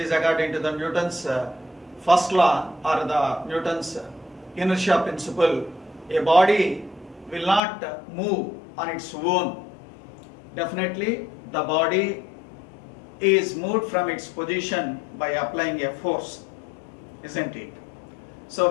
according to the Newton's first law or the Newton's inertia principle. A body will not move on its own. Definitely the body is moved from its position by applying a force, isn't it? So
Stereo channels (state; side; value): drops out; right; at 7.6 s